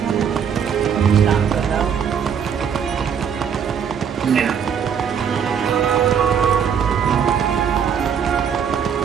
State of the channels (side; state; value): left; quieter; 7.5 dB